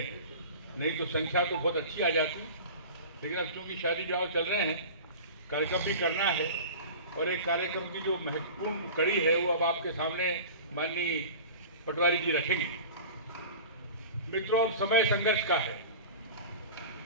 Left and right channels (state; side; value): inverted; both; correlation -0.36